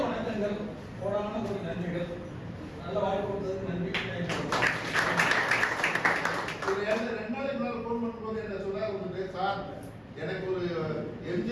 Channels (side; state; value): both; identical; correlation 1.00